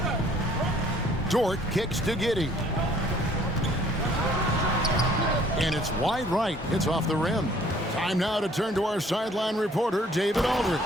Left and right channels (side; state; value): both; normal; correlation 0.58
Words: Dort kicks to Giddey. And it's wide right. It's off the rim. Time now to turn to our sideline reporter, David Aldridge.